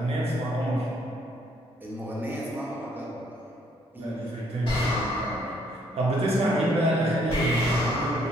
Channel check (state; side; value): normal; both; correlation 0.67